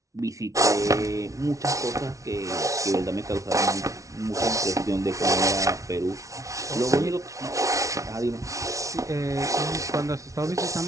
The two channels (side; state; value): left; late; 0.16 ms